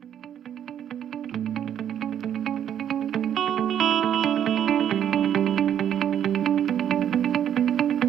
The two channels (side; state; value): left; quieter; 9.8 dB